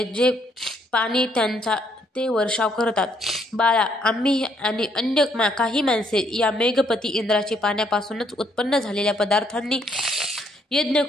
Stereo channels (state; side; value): normal; both; correlation 0.70